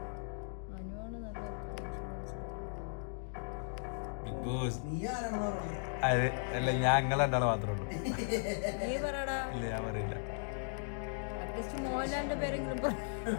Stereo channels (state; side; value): silent; right; digital silence